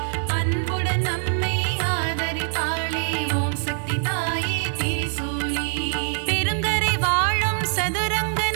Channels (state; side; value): silent; left; 55 dB below the other